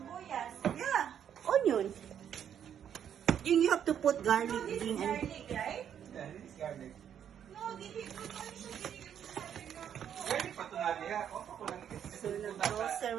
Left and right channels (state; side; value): quieter; left; 9.1 dB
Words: Yeah. Onion. And you have to put garlic. No, this is Gigi. garlic, right? yeah, this is garlic. No, dili ko ano siya ginigil mo sa akin na ako. Garlic pa ito nga niya. Opo ko lang. So,